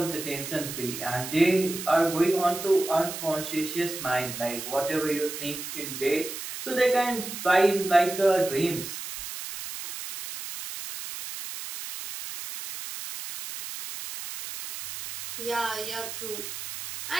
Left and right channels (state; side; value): noise; right; hiss, 8 dB below the sound